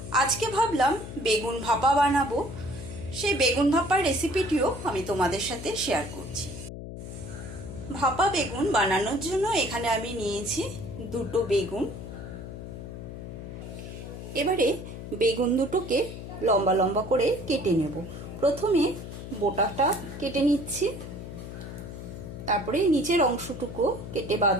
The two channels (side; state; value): left; noise; hum, 10 dB below the sound